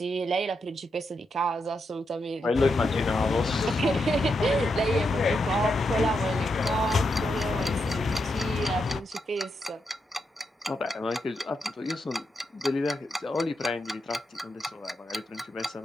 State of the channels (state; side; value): normal; both; correlation 0.84